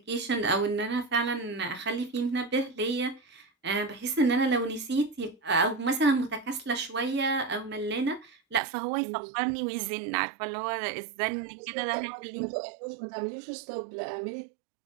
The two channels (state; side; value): drops out; left; at 8.6 s